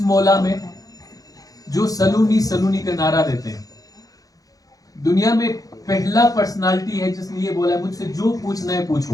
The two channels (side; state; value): right; late; 0.17 ms